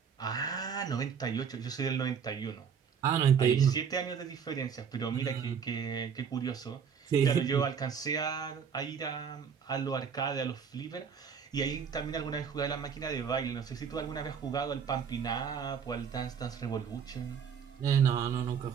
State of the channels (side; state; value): left; quieter; 6.9 dB